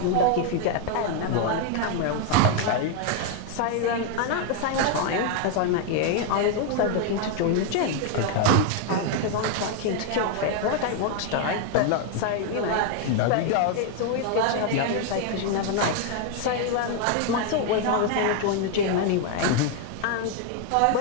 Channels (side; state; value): both; different; correlation 0.01